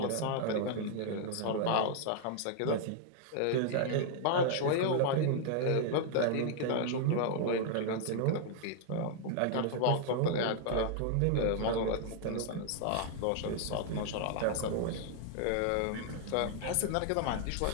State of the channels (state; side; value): different; both; correlation 0.00